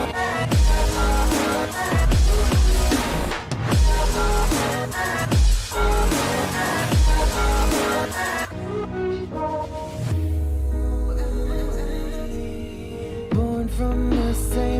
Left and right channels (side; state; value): both; identical; correlation 1.00